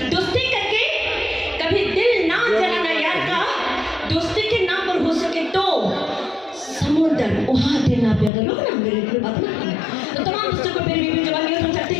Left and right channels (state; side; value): drops out; right; at 8.3 s